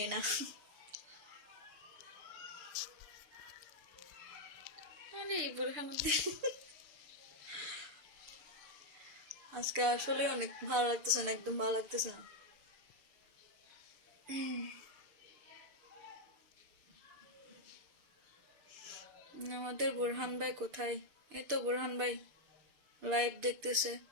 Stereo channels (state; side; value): late; left; 6.8 ms